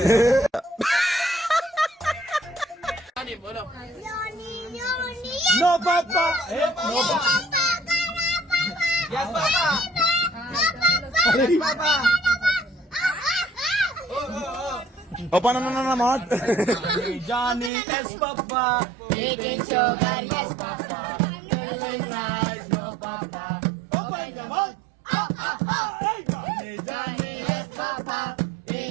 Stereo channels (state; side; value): drops out; left; at 17.7 s